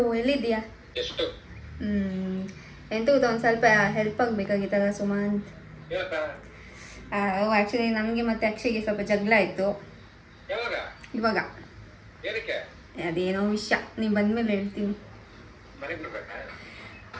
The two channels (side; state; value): both; identical; correlation 1.00